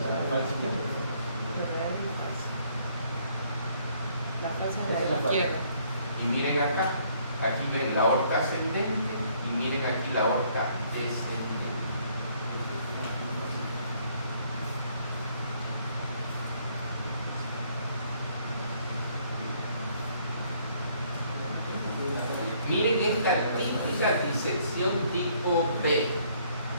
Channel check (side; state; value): both; inverted; correlation -0.65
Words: de la izquierda. Y miren acá, aquí ven la aorta ascendente y miren aquí la aorta descendente. Miren esta típica disección tipo B.